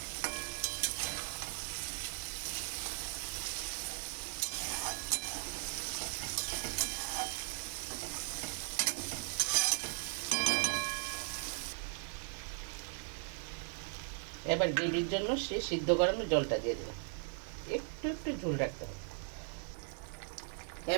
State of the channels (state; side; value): silent; left; 52 dB below the other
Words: এবার গ্রেভির জন্য সে সিদ্ধ করানো জলটা দিয়ে দেবো, একটু একটু ঝোল রাখতে হবে।